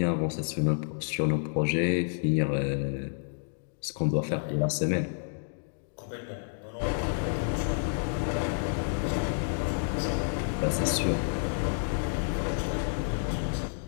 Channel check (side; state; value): right; silent; digital silence